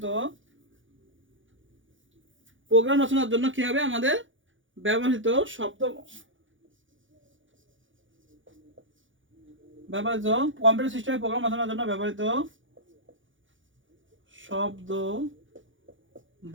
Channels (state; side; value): late; left; 0.56 ms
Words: জন্য কি হবে? আমাদের ব্যবহৃত কম্পিউটার সিস্টেমে প্রোগ্রাম রচনার জন্য ব্যবহৃত শব্দ,